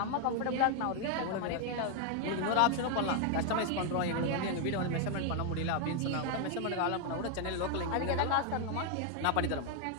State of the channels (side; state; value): both; different; correlation 0.00